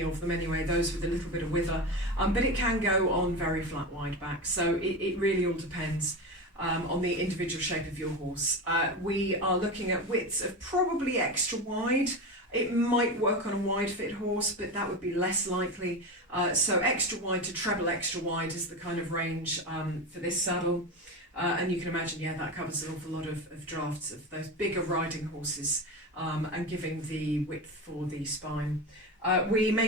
of them anyway, those with a little bit of wither, but it can go on very flat wide backs, so it really all depends on the individual shape of your horse. We are looking at widths of probably extra wide. It might work on a wide fit horse, but that would be less likely. So extra wide to treble extra wide is the kind of range for this saddle. And you can imagine, that covers an awful lot of drafts of those bigger riding horses, and giving the width for the spine. We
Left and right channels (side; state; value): both; normal; correlation 0.22